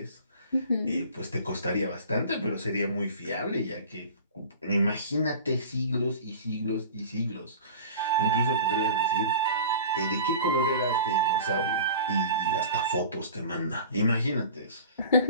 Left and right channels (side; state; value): both; inverted; correlation -0.39